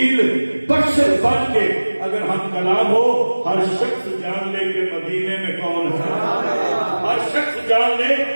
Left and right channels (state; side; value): inverted; both; correlation -1.00